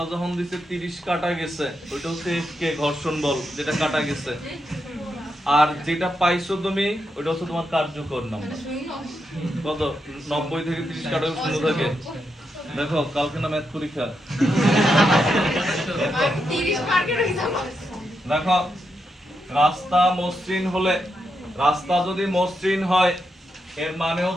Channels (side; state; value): both; normal; correlation 0.84